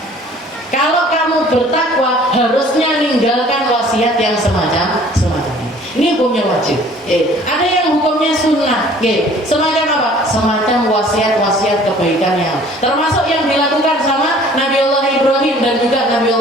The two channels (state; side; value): normal; both; correlation 0.52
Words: Kalau kamu bertakwa harusnya ninggalkan wasiat yang semacam ini. Ini hukumnya wajib. Ada yang hukumnya sunnah. Semacam apa? Semacam wasiat kebaikan yang termasuk yang dilakukan sama Nabiullah Ibrahim dan juga